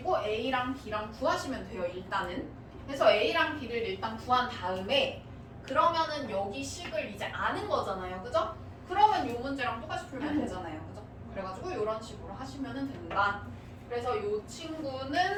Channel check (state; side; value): identical; both; correlation 1.00